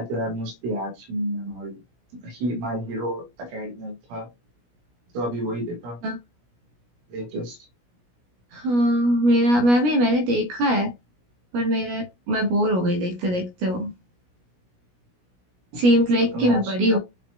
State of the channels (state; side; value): late; left; 17 ms